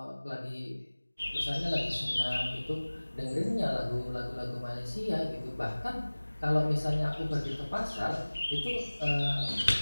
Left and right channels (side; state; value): both; inverted; correlation -1.00